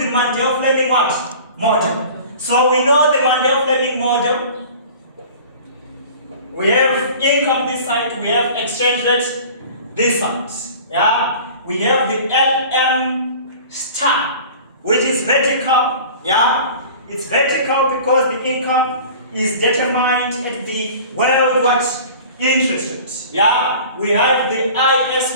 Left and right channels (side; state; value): both; inverted; correlation -0.42